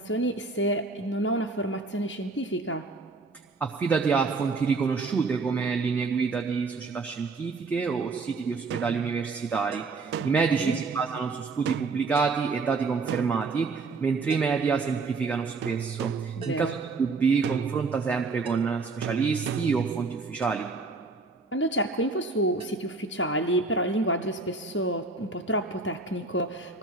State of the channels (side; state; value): left; quieter; 4.0 dB